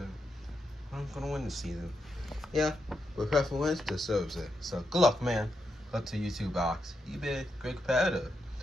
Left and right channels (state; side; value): normal; both; correlation 0.83